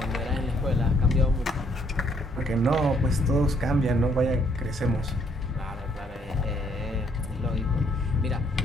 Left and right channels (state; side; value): normal; both; correlation 0.68